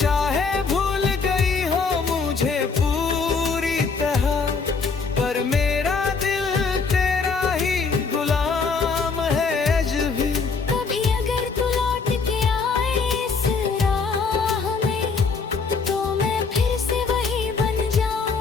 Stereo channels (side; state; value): right; quieter; 4.8 dB